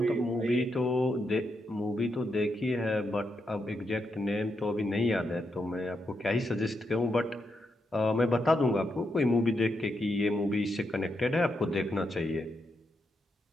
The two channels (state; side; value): normal; both; correlation 0.82